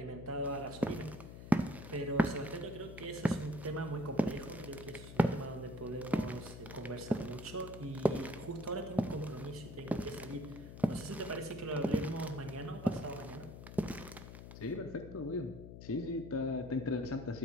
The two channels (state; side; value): noise; left; hum, 12 dB below the sound